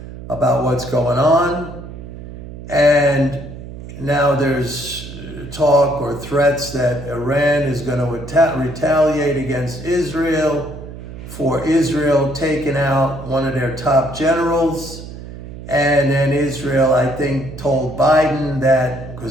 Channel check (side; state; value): right; noise; hum, 12 dB below the sound